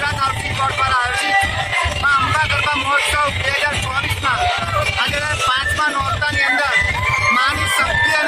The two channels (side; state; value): both; identical; correlation 1.00